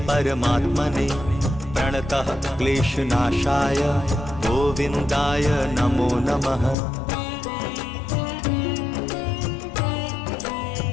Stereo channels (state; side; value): drops out; right; at 6.8 s